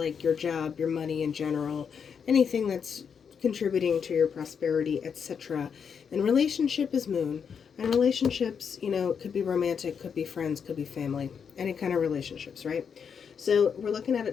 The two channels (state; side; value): quieter; right; 6.8 dB